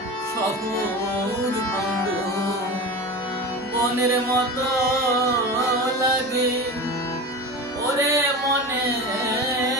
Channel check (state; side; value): normal; both; correlation 0.29